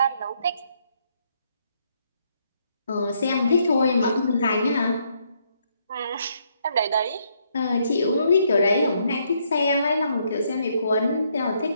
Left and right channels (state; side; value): inverted; both; correlation -0.73